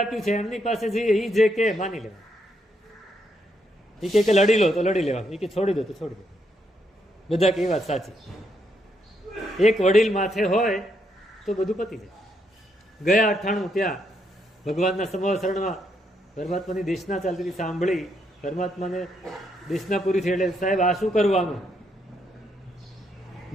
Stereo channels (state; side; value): normal; both; correlation 0.77